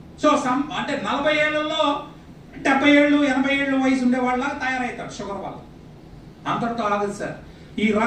సో అంటే 40 ఏళ్లలో 70 ఏళ్ళు 80 ఏళ్ళు వయసు ఉండే వాళ్ళ తయారవుతారు షుగర్ వల్ల. అంతటితో ఆగదు సార్. ఈ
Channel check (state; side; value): identical; both; correlation 1.00